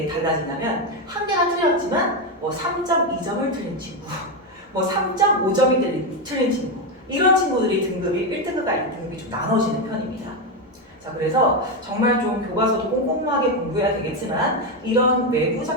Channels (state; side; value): normal; both; correlation 0.09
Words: 달라지냐면 한 개가 틀렸지만 뭐 3.2점을 틀린 친구, 뭐 3.5점이 틀린 친구 이런 친구들이 등급이 1등급과 2등급이 좀 나눠지는 편입니다. 자, 그래서 정말 좀 교과서도 꼼꼼하게 공부해야 되겠지만 이런 외부